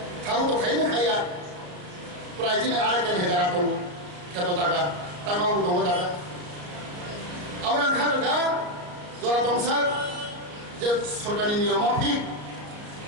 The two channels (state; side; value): late; left; 34 ms